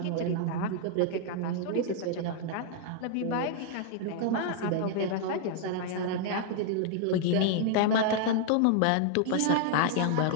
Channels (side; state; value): both; different; correlation -0.01